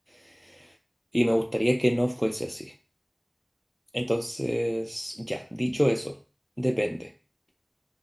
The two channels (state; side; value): identical; both; correlation 1.00